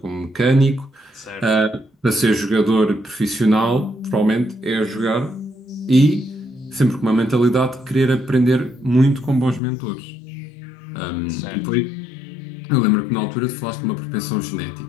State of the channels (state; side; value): drops out; right; at 9.6 s